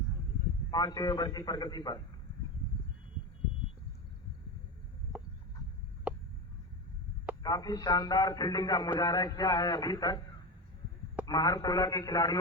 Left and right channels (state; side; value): normal; both; correlation 0.20